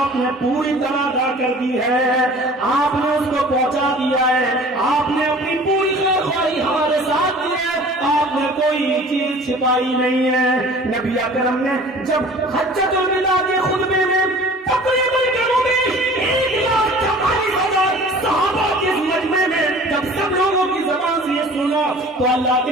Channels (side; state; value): both; normal; correlation 0.46